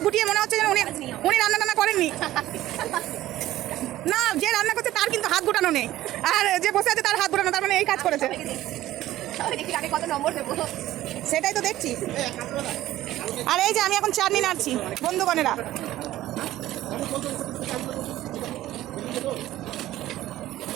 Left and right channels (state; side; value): quieter; left; 14.8 dB